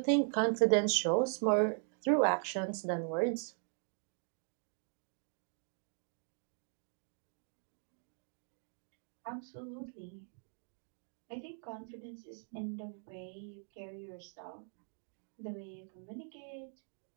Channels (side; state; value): left; silent; 51 dB below the other